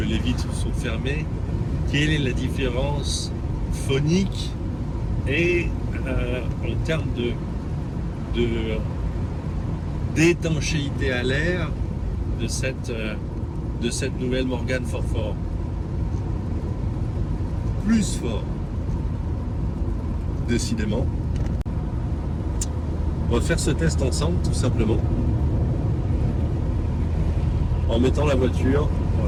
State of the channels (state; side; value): identical; both; correlation 1.00